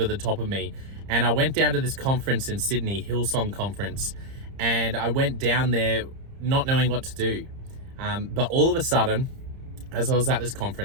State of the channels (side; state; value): left; late; 30 ms